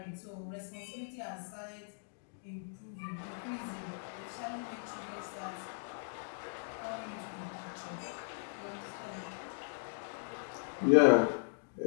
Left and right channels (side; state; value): right; silent; digital silence